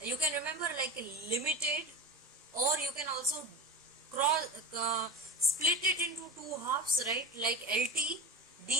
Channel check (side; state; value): both; normal; correlation 0.30